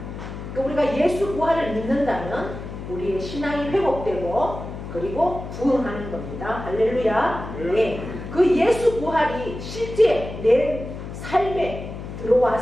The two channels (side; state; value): left; noise; hum, 9 dB below the sound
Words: 그러니까 우리가 예수 부활을 믿는다면 우리의 신앙이 회복되고 그리고 부흥하는 겁니다. 할렐루야. 네. 그 예수 부활이 실제 내 삶에